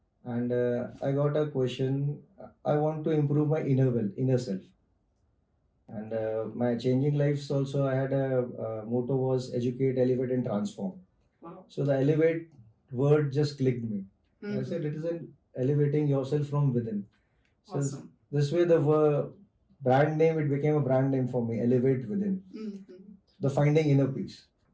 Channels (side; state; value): both; identical; correlation 1.00